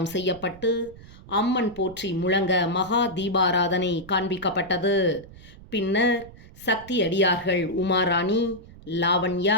செய்யப்பட்டு அம்மன் போற்றி முழங்க மகா தீபாராதனை காண்பிக்கப்பட்டது. பின்னர் சக்தி அடியார்கள் உமாராணி,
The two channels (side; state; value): right; noise; rumble, 19 dB below the sound